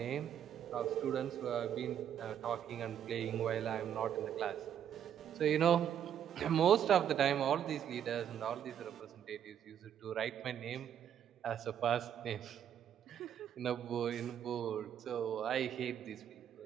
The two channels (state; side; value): quieter; left; 9.4 dB